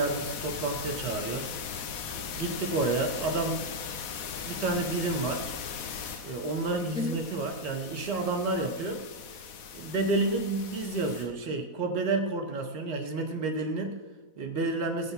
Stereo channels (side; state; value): right; late; 4.1 ms